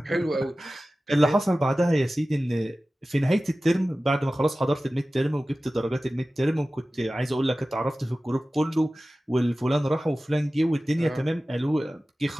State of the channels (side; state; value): both; normal; correlation 0.96